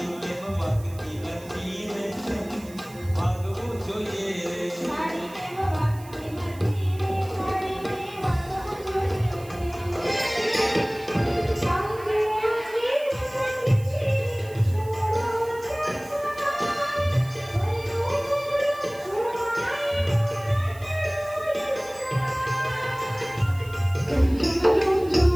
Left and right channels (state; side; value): noise; right; hiss, 21 dB below the sound